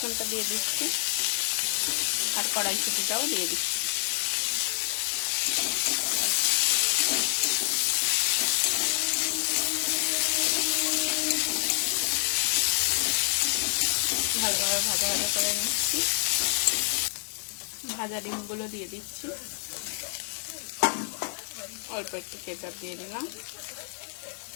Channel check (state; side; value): silent; right; digital silence